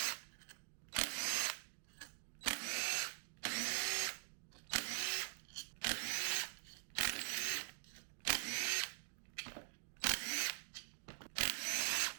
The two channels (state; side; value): silent; left; digital silence